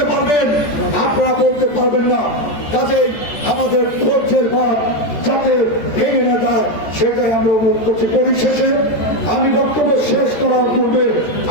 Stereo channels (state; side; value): late; right; 14 ms